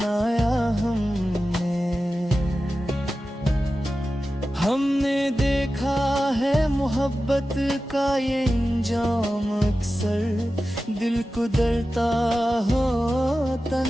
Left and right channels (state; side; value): normal; both; correlation 0.94